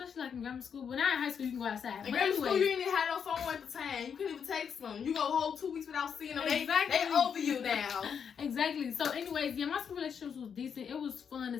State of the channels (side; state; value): right; quieter; 7.2 dB